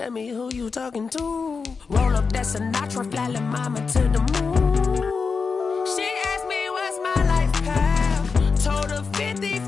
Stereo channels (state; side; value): quieter; right; 5.0 dB